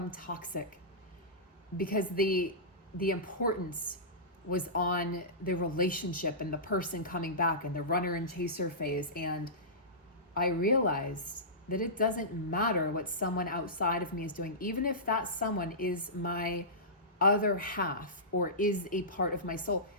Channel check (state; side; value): normal; both; correlation -0.19